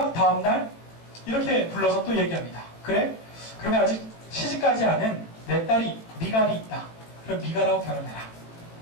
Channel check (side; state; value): right; late; 18 ms